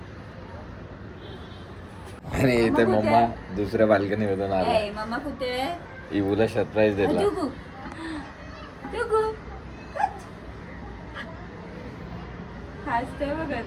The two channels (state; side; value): identical; both; correlation 1.00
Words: आणि इथे मम्मा दुसऱ्या बाल्कनीमधून आला. मम्मा कुठे? इवूला सरप्राईज दिला. हसते बघा